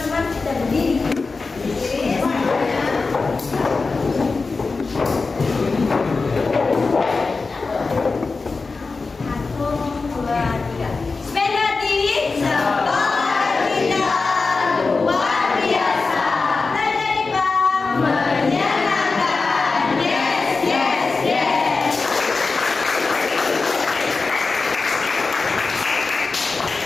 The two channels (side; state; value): right; quieter; 4.1 dB